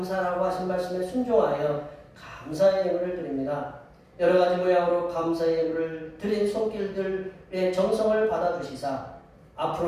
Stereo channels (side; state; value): both; identical; correlation 1.00